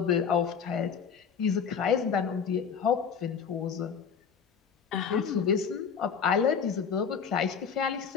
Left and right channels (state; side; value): quieter; right; 6.7 dB